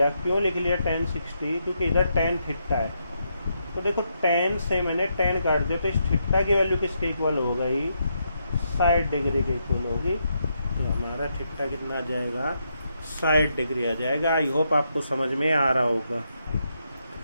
क्यों लिख लिया tan 60, क्योंकि इधर tan थीटा है। तो देखो tan से मैंने tan काट दिया तो इस थीटा की वैल्यू किसके इक्वल हो गई 60 डिग्री के इक्वल होगी। तो हमारा थीटा कितना आ जाएगा 60 डिग्री आ जाएगा। आई होप आपको समझ में आ रहा होगा।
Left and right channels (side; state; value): both; inverted; correlation -0.80